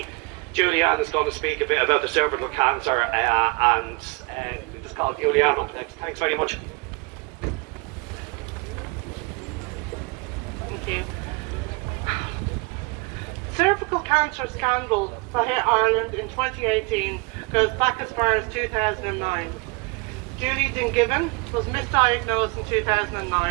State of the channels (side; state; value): left; quieter; 27.8 dB